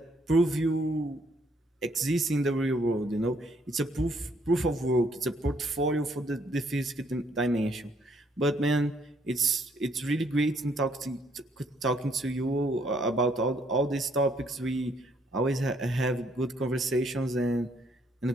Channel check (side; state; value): both; normal; correlation 0.68